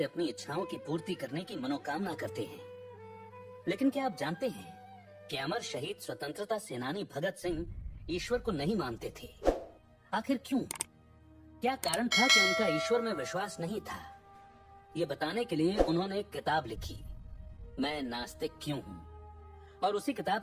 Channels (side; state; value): both; identical; correlation 1.00